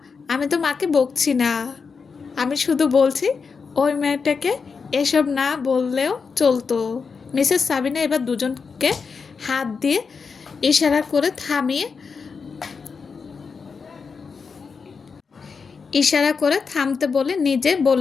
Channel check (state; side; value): quieter; right; 5.3 dB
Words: আমি তো মাকে বকছি না। আমি শুধু বলছি ওই মেয়েটাকে এসব না বললেও চলতো। মিসেস সাবিনা এবার দুজনকে হাত দিয়ে ইশারা করে থামিয়ে ইশারা করে থামতে বলে নিজে